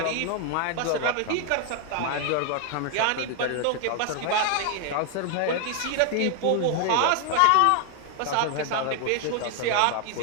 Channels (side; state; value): both; different; correlation 0.00